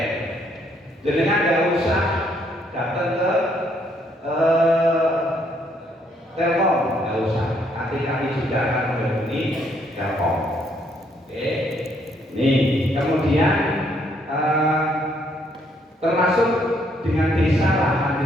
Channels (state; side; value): normal; both; correlation 0.70